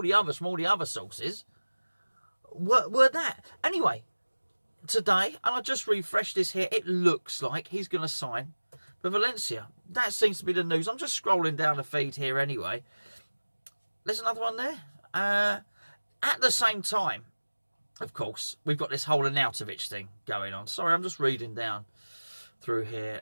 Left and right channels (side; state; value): both; inverted; correlation -1.00